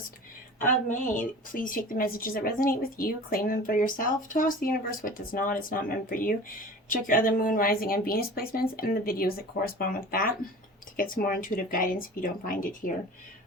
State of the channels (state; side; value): normal; both; correlation 0.39